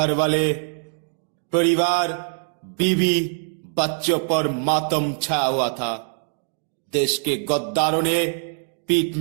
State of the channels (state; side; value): silent; left; digital silence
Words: वाले, परिवार, बीवी, बच्चों पर मातम छाया हुआ था। देश के गद्दारों ने पीठ